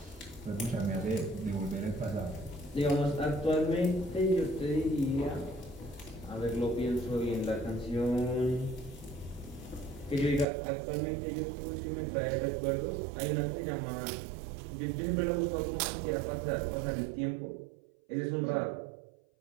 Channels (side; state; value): left; drops out; at 10.5 s